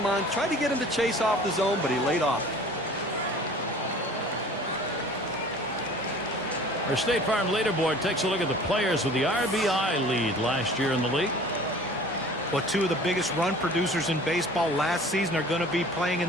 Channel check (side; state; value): both; normal; correlation 0.46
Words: on. Tried to get him to chase off the zone, but he laid off. Our State Farm leaderboard takes a look at the players with the RBI lead last year in the league. Well, 2 of the biggest run producers in baseball last season are going to be playing in